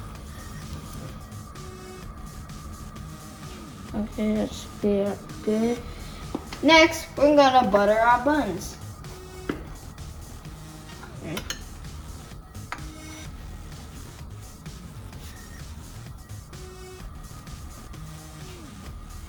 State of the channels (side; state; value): both; identical; correlation 1.00